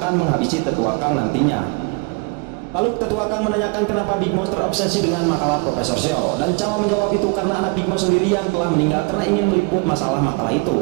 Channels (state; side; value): quieter; left; 29.9 dB